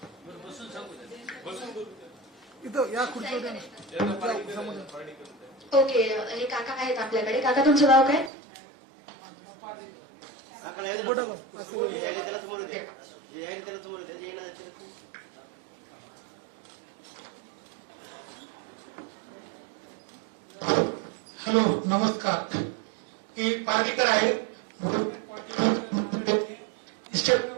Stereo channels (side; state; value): left; drops out; at 8.3 s